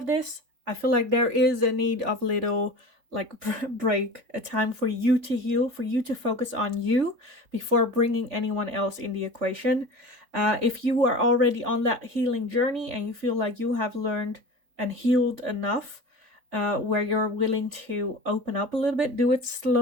this, I feel like there is a need of little like break, a time for you to heal, for you to focus on you before bringing anyone else in the equation. If you are already on that healing journey and you feel like you have learned and healed enough, where you're willing to open up a little bit, do it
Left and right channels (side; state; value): left; late; 3.5 ms